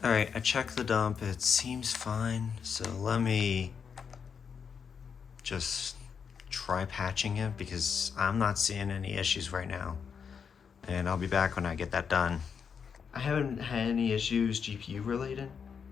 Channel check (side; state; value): right; quieter; 6.6 dB